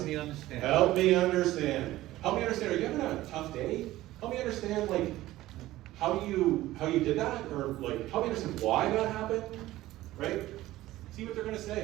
me understand. Help me understand. Help me understand. Are you having a tough day? Help me understand, like, how you did that, or like help me understand why that happened, right? See what they're gonna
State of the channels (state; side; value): quieter; left; 16.1 dB